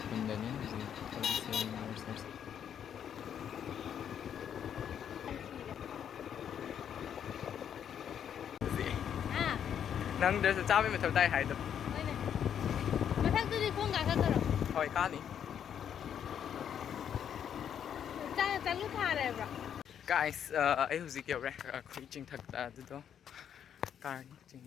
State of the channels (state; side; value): quieter; right; 8.8 dB